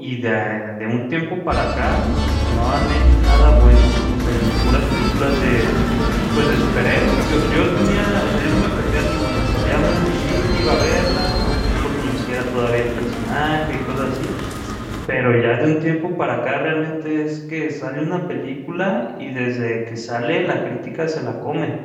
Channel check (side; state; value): both; identical; correlation 1.00